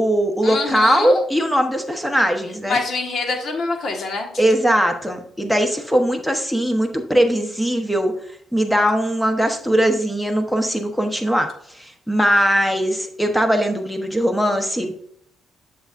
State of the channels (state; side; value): normal; both; correlation 0.90